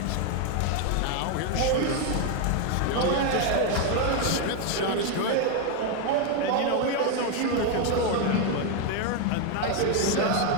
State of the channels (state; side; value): different; both; correlation 0.01